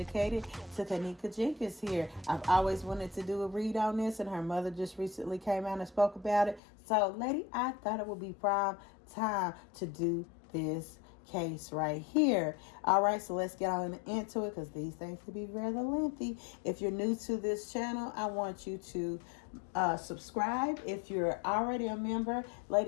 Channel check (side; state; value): right; drops out; at 6.6 s